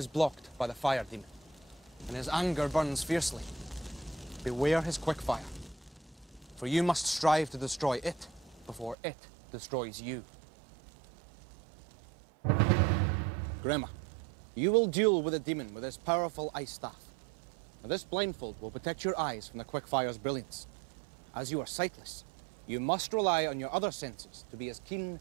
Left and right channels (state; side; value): drops out; left; at 9.0 s